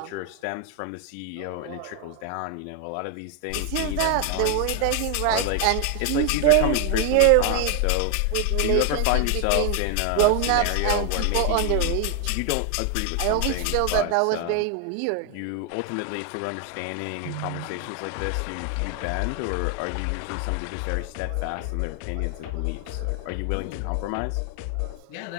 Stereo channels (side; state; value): both; different; correlation 0.01